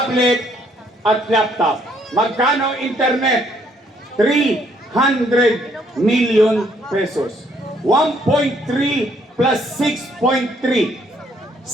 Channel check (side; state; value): both; normal; correlation 0.67